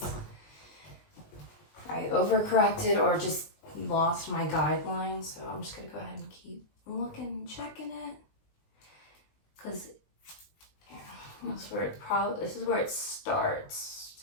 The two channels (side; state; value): right; late; 20 ms